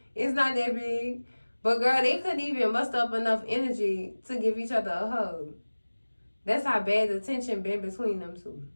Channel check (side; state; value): both; inverted; correlation -1.00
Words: It's not that big. But girl, they couldn't even muster up enough energy to give each other a hug. That's how bad the tension been between them two.